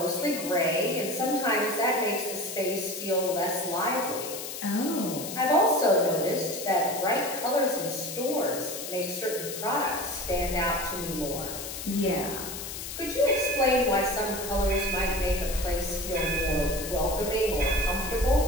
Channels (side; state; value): left; noise; hiss, 8 dB below the sound